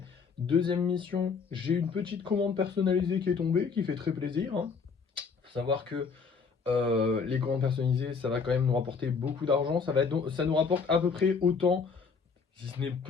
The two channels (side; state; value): right; quieter; 5.4 dB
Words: Deuxième mission, j'ai une petite commande personnalisée qui est tombée, qui fait très plaisir, hein. Faut savoir que les commandes personnalisées, ça va quand même nous rapporter beaucoup d'argent. Ça nous rapporte à peu près autant, si ce n'est